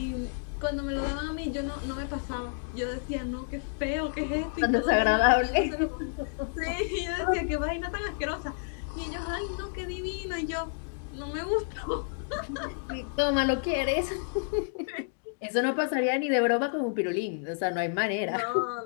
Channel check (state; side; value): silent; right; digital silence